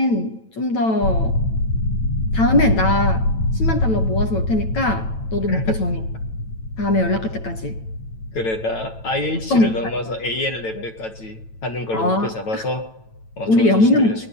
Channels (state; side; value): late; right; 9.0 ms